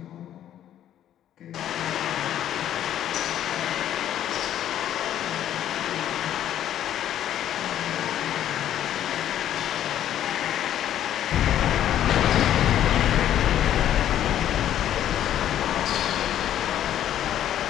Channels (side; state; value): right; quieter; 11.2 dB